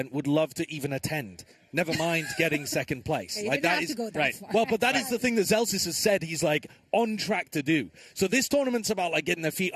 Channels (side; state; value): both; identical; correlation 1.00